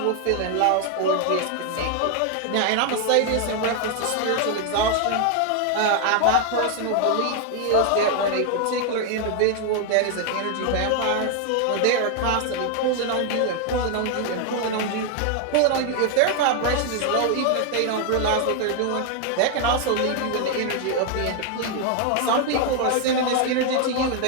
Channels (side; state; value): both; different; correlation 0.01